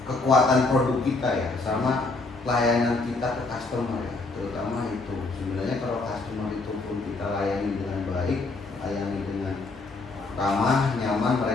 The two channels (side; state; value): right; quieter; 3.5 dB